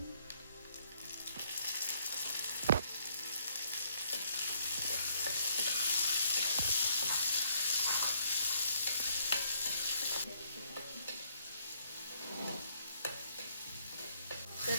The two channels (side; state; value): both; inverted; correlation -0.68